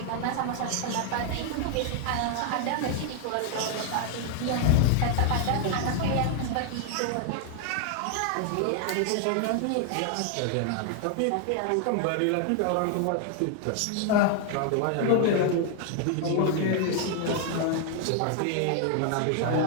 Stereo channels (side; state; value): both; different; correlation 0.00